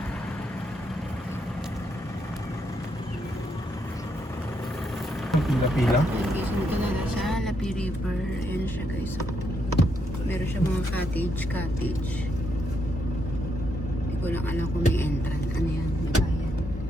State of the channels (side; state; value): both; normal; correlation 0.78